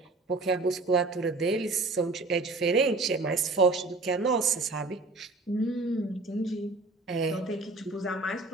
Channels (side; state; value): left; quieter; 3.4 dB